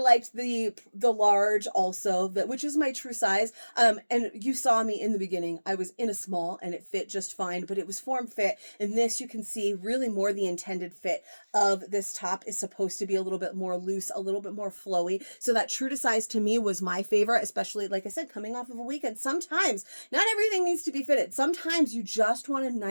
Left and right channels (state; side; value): inverted; both; correlation -1.00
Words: the large also, which is my true size. And you saw me in the beginning, I was in a small and it fit just fine, but it was form fit. And this, you can see really more the intended fit of this top is supposed to be a little bit more loose, a little bit more flowy. So that true to size to me was my favorite, especially, like I said, coming off of a weekend. Sometimes not everything needs to be fitted. Sometimes you just want a